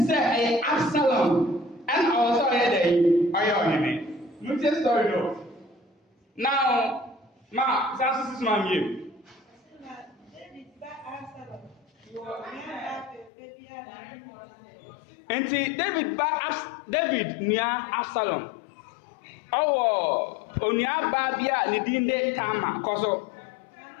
say Absalom and also there ayoneme. No tell story no. Now ma sasu sis ma mie. Enti David nia Absalom. Owo onua ba bia ne din de Tama koso.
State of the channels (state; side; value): drops out; right; at 13.3 s